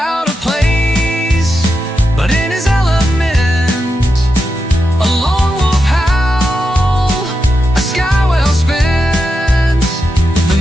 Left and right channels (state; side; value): normal; both; correlation 0.87